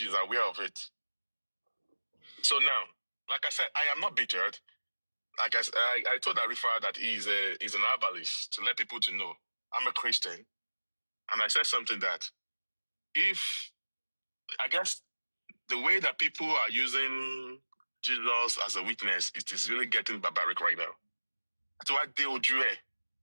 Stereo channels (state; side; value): inverted; both; correlation -1.00